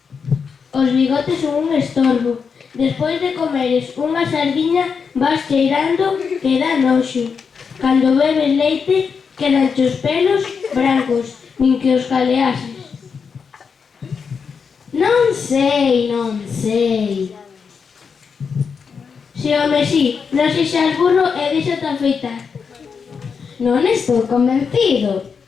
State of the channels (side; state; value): right; quieter; 5.9 dB